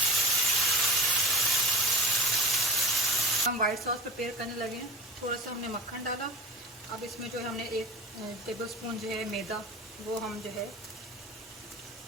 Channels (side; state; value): both; normal; correlation 0.35